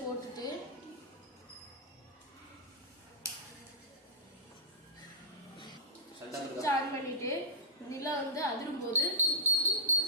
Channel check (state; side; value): normal; both; correlation -0.17